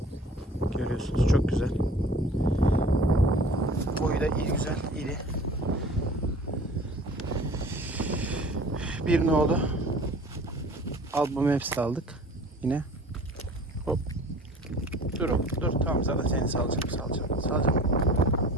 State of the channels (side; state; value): both; normal; correlation 0.46